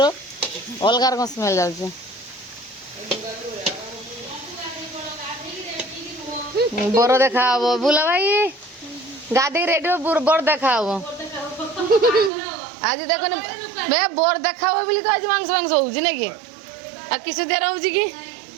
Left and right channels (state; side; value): drops out; left; at 12.3 s